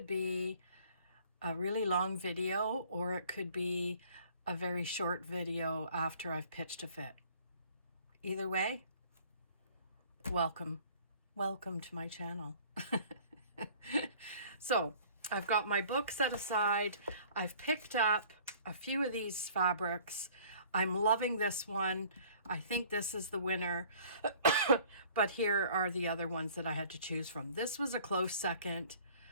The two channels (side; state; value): both; inverted; correlation -0.53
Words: be a really long video, or it could be a very short video after I've pitched a fit. Either way, welcome to my channel. So I've got my book set aside. I've picked up a few of these fabrics. I'm loving this one. I think this is the winner, but here are the other ones that I had to choose from. This was a close second,